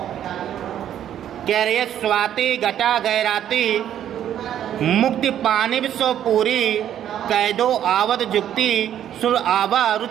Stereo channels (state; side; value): quieter; left; 10.5 dB